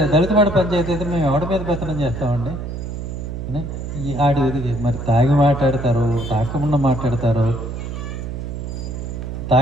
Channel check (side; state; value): right; noise; hum, 6 dB below the sound